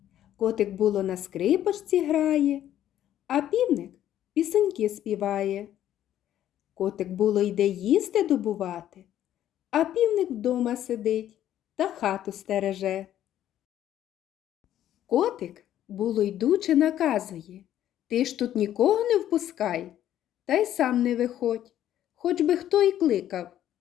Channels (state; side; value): quieter; right; 11.7 dB